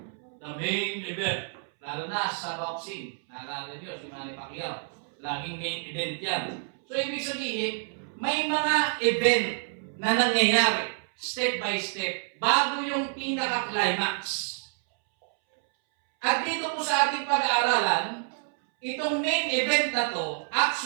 The main event. Lalo na sa boxing. Naalala nyo, si Manny Pacquiao. Laging main event yan. So, ibig sabihin, may mga event na nangyayari, step by step, bago yung pinaka-climax. At dito po sa ating pag-aaralan, itong main event na to,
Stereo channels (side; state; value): left; silent; 59 dB below the other